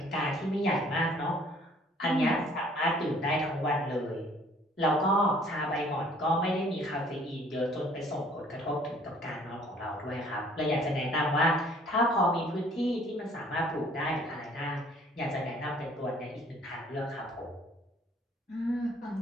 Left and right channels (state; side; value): normal; both; correlation 0.57